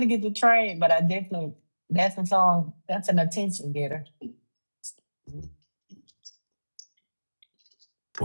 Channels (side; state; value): both; inverted; correlation -1.00